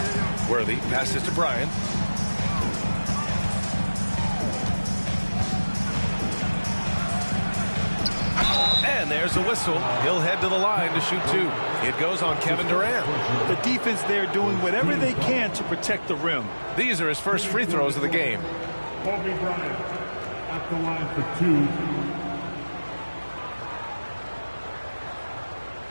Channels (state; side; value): inverted; both; correlation -1.00